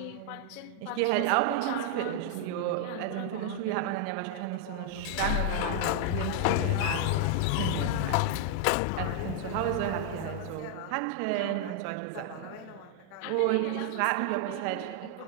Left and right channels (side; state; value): both; different; correlation 0.00